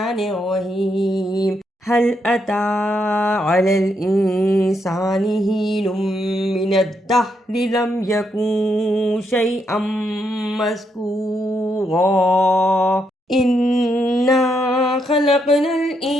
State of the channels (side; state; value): both; normal; correlation 0.78